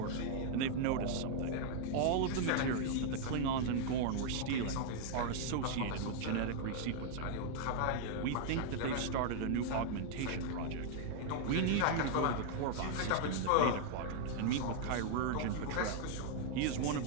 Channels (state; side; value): different; both; correlation 0.00